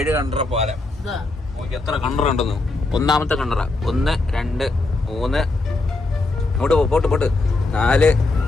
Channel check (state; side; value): quieter; right; 3.2 dB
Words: കണ്ടറ പാലം. എത്ര കണ്ടറ ഉണ്ടെന്ന്. ഒന്നാമത്തെ കണ്ടറ 1 2 3 അങ്ങോട്ട് പോട്ട് 4